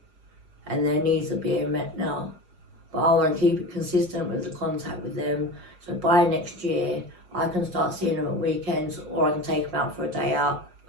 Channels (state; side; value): late; left; 5.5 ms